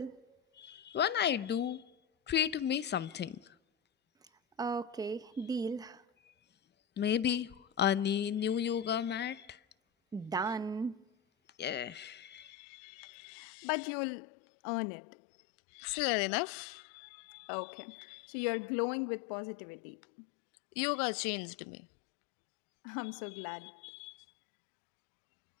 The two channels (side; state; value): right; drops out; at 12.5 s